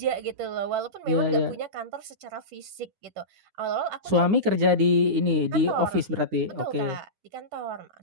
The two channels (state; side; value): late; left; 9.7 ms